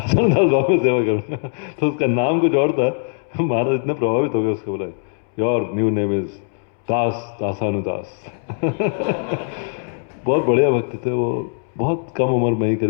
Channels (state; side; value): silent; right; 65 dB below the other